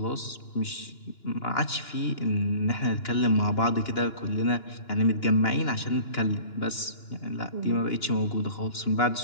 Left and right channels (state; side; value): late; right; 2.9 ms